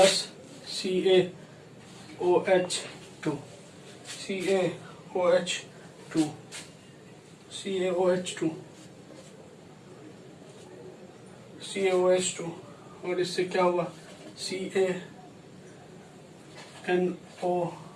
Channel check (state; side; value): identical; both; correlation 1.00